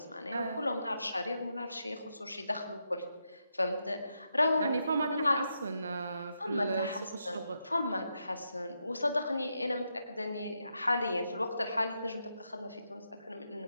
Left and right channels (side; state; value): both; inverted; correlation -0.83